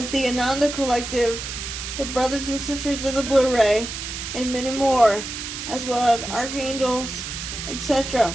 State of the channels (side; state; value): right; noise; hiss, 7 dB below the sound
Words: the Ananda Collective, the Brothers and Sisters of the Blue Ray, and many more, as well as archangels,